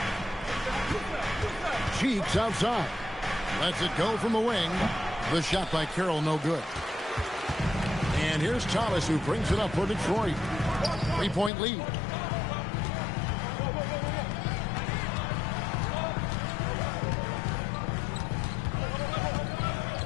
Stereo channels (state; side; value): drops out; right; at 11.5 s